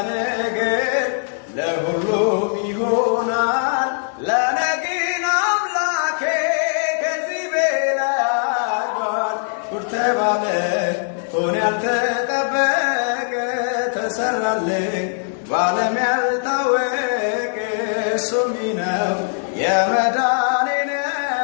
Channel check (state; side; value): silent; right; 62 dB below the other